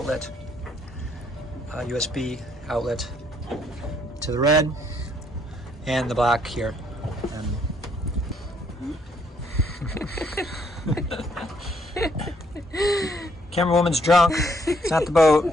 USB outlet, to the red and the black here. Camera woman's drunk. It's not the boat.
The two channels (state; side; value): normal; both; correlation 0.68